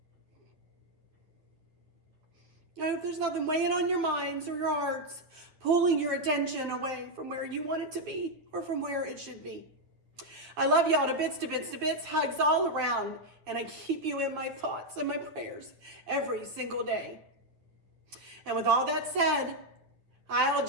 I hope there's nothing weighing on your minds or your hearts, pulling your attention away from where you want it to be or from where it should be. I love y'all to bits, to bits, to bits, hugs all around, and I keep you in my thoughts and my prayers every single day. And with all that said, I'll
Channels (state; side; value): late; left; 9.8 ms